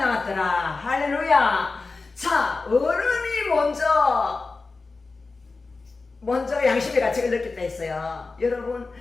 할렐루야. 자, 어른이 먼저 양심의 가책을 느꼈다 했어요. 여러분,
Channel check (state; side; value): quieter; right; 3.9 dB